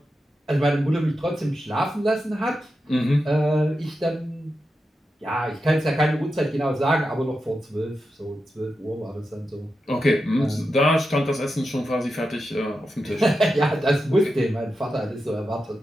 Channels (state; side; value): normal; both; correlation 0.89